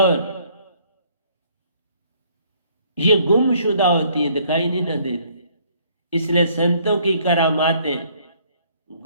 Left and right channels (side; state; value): both; inverted; correlation -0.63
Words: ये गुमशुदा होती है, दिखाई नहीं ना देती, इसलिए संतों की करामातें